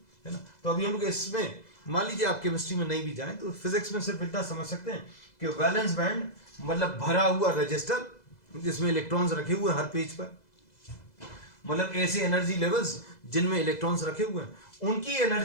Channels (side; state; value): right; late; 2.0 ms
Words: है ना। तो अभी हम लोग इसमें, मान लीजिए आप केमिस्ट्री में नहीं भी जाएं तो फिजिक्स में सिर्फ इतना समझ सकते हैं कि वैलेंस बैंड मतलब भरा हुआ रजिस्टर जिसमें इलेक्ट्रॉन्स रखे हुए हर पेज पर, मतलब ऐसे एनर्जी लेवल्स जिनमें इलेक्ट्रॉन्स रखे हुए हैं, उनकी